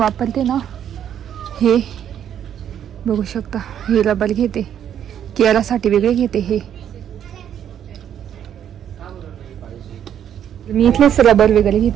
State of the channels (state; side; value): quieter; left; 9.6 dB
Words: ना हे, बघू शकता. हे रबर घेते, केरासाठी वेगळे घेते. हे मी इथलेच रबर वगैरे